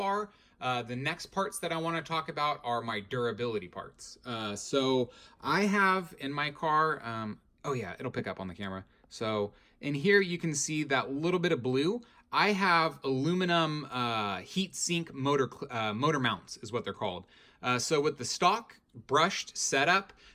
The next parts that I want to talk about are my durability parts. So I have in my car, oh yeah, it'll pick up on the camera. So in here you can see that little bit of blue. I have aluminum heat sink motor mounts is what they're called. So with the stock brushed setup,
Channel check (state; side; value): identical; both; correlation 1.00